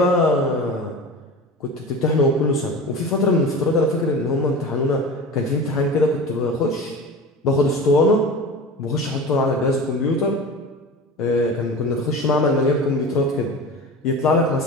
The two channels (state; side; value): normal; both; correlation 0.32